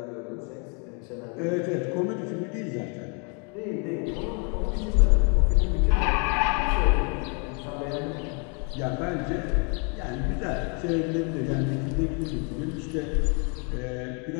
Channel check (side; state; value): right; quieter; 37.5 dB